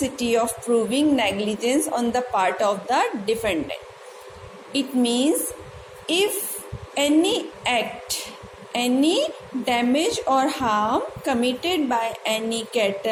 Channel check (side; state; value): both; identical; correlation 1.00